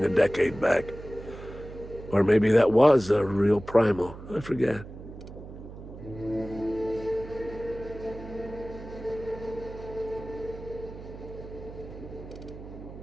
a decade back. Or maybe that was a real primal, I forget.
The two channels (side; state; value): right; noise; hum, 13 dB below the sound